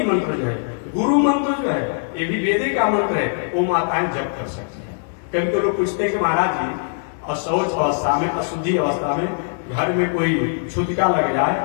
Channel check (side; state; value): right; silent; digital silence